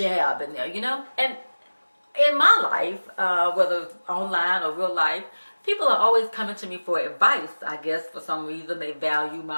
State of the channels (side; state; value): both; inverted; correlation -1.00